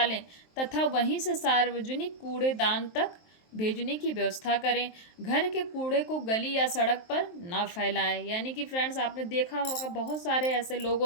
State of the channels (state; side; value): late; right; 23 ms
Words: तथा वहीं से सार्वजनिक कूड़ेदान तक भेजने की व्यवस्था करें। घर के कूड़े को गली या सड़क पर ना फैलाएं, यानी कि फ्रेंड्स आपने देखा होगा बहुत सारे ऐसे लोग